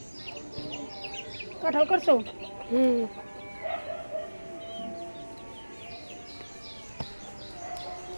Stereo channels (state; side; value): inverted; both; correlation -1.00